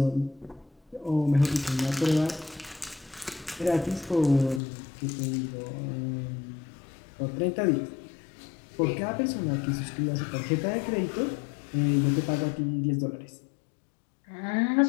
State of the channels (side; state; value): right; drops out; at 4.6 s